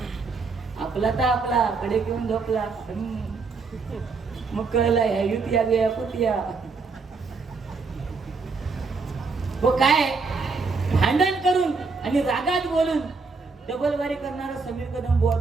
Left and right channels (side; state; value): left; quieter; 4.5 dB